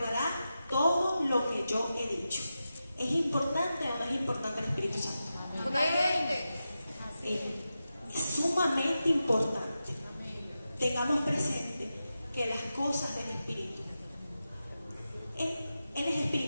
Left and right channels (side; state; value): both; inverted; correlation -0.91